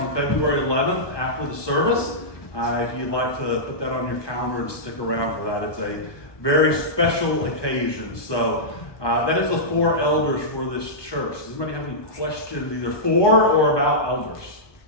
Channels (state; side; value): late; right; 1.2 ms